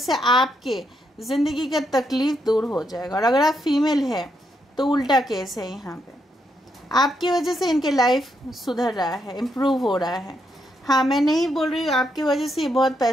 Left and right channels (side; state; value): both; normal; correlation 0.79